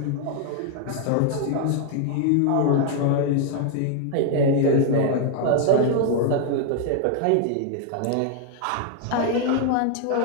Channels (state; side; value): different; both; correlation 0.00